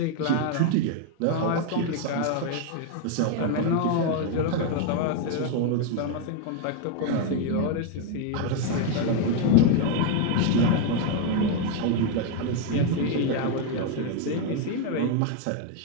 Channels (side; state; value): both; different; correlation 0.01